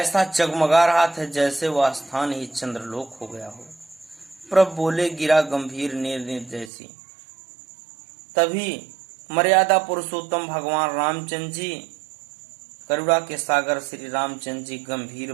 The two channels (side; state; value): left; drops out; at 6.7 s